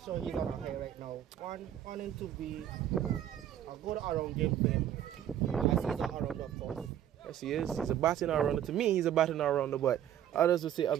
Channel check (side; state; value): left; quieter; 10.7 dB